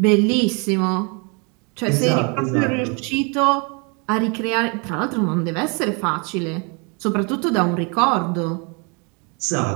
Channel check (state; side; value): quieter; left; 33.4 dB